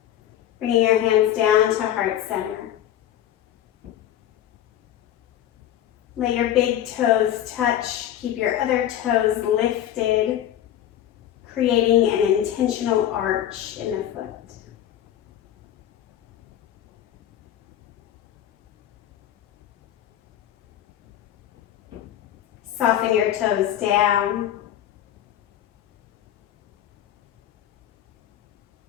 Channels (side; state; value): right; quieter; 11.5 dB